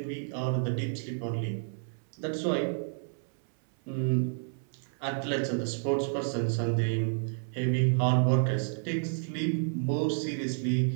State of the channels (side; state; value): left; silent; 58 dB below the other